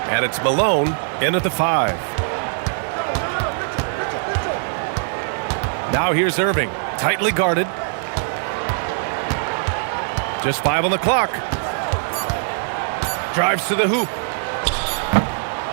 And it's Malone in at the 5. Now here's Irving, tightly guarded. Just 5 on the clock. Drives to the hoop.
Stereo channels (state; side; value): silent; left; digital silence